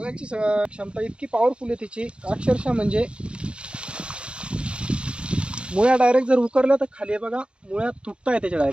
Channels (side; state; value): left; late; 0.056 ms